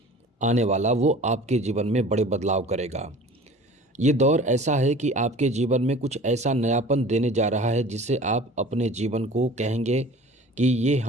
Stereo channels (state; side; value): normal; both; correlation 0.43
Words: आने वाला वो आपके जीवन में बड़े बदलाव करेगा। ये दौर ऐसा है कि आपके जीवन में कुछ ऐसा नयापन देने जा रहा है जिससे आप अपने जीवन को कहेंगे कि ये